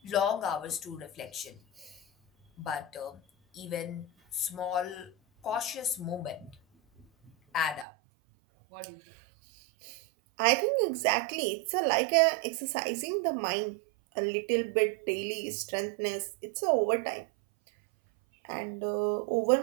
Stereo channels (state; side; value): drops out; left; at 7.9 s